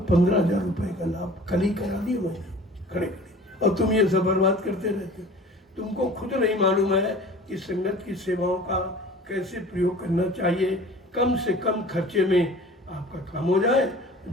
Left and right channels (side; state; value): both; normal; correlation 0.44